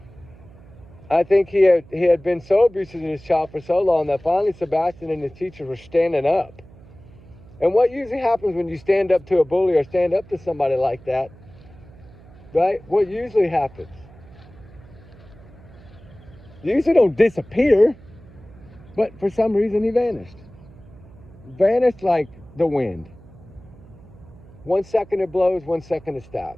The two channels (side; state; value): right; noise; hum, 22 dB below the sound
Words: I think he had been so abusive to his child for so long that finally Sebastian and his teachers were standing up. And what usually happens when you stand up to a bully or stand up to somebody like that, right? What usually happens? You usually don't disappear, but for some reason he vanished. Vanished like the wind. 1 second it blows, 1 second it